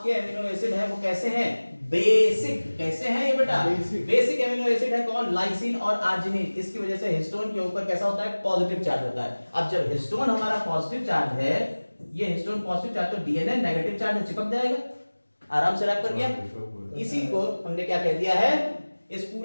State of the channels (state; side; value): inverted; both; correlation -1.00